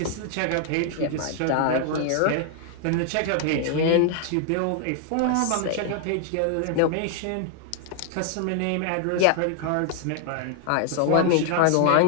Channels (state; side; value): different; both; correlation 0.00